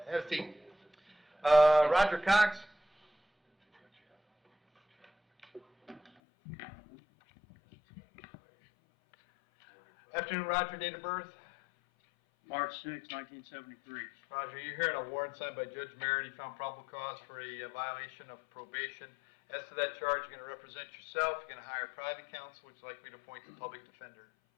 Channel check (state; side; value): drops out; right; at 6.1 s